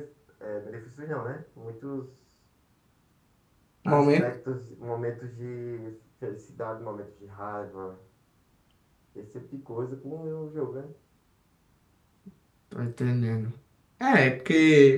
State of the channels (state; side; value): identical; both; correlation 1.00